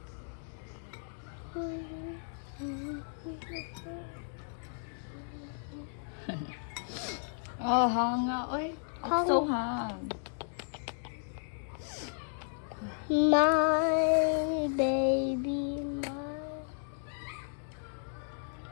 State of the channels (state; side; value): silent; right; digital silence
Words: Oh, hanga, oy. I'm so hung. My baby,